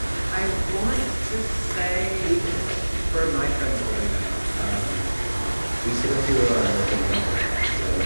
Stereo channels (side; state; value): both; inverted; correlation -1.00